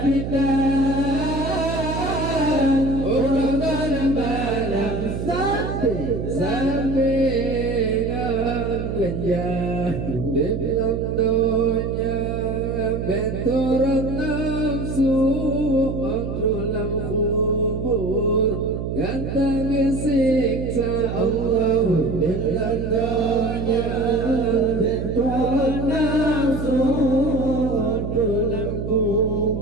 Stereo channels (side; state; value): right; noise; hum, 4 dB below the sound